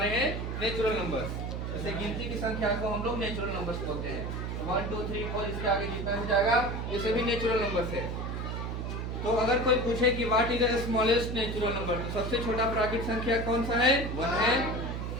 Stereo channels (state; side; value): noise; right; hum, 4 dB below the sound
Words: हैं नेचुरल नंबर्स। जैसे गिनती की संख्या को हम लोग नेचुरल नंबर्स बोलते हैं। 1 2 3 4 इसके आगे जितना भी जाएगा ये सभी नेचुरल नंबर्स है। तो अगर कोई पूछे कि what is the smallest natural number, तो सबसे छोटा प्राकृतिक संख्या कौन सा है? 1 है।